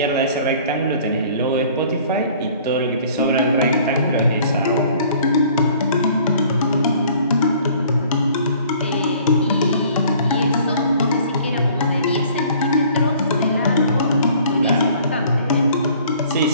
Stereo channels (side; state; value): both; inverted; correlation -0.53